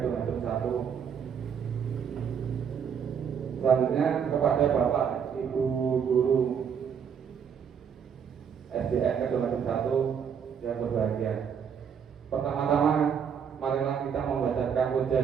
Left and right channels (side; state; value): left; quieter; 7.4 dB